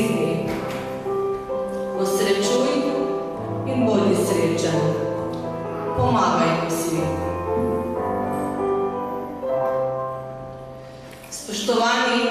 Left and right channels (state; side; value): identical; both; correlation 1.00